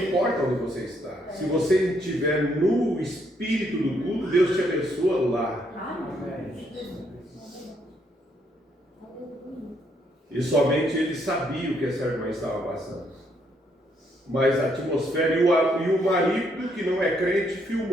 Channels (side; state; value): both; normal; correlation 0.73